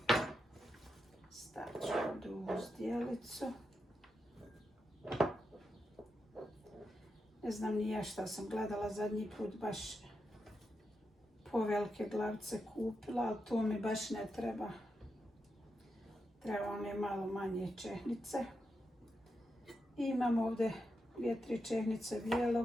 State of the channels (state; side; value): normal; both; correlation 0.86